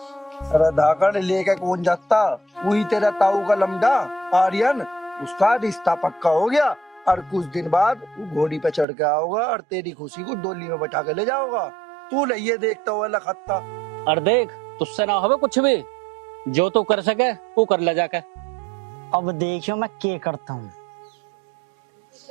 धाकड़ लेके कौन जाता? वही तेरा ताऊ का लमडा आर्यन, उसका रिश्ता पक्का हो गया और कुछ दिन बाद वो घोड़ी पे चढ़ के आओगा और तेरी खुशी को डोली में बैठा के ले जाओगा। तू नहीं देखता हुआ लखत्ता। और देख, तुझसे ना होवे कुछ भी, जो तू कर सके वो कर ले जाके। अब देखियो मैं क्या करता हूँ।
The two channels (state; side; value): drops out; left; at 8.8 s